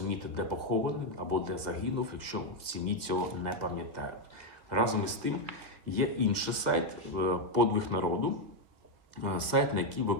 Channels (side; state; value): left; late; 2.1 ms